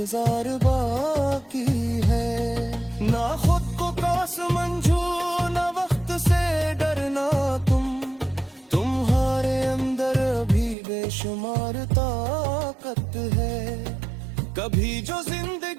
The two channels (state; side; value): drops out; left; at 10.8 s